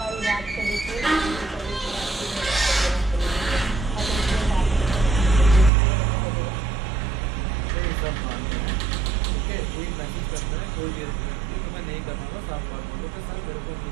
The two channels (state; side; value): drops out; left; at 5.7 s